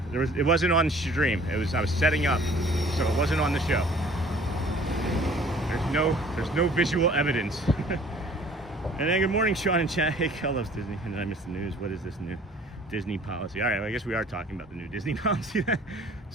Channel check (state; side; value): normal; both; correlation 0.52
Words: It wasn't on stream. I was setting up, so it wasn't on the show. There's no visual evidence. And then good morning, Sean and chat. Hey, Kel loves Disney. And then I missed the news. What is this new Disney policy? All right, well, I guess we are talking about the new Disney policy then.